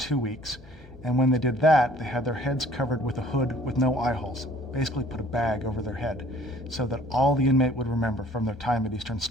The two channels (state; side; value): normal; both; correlation 0.54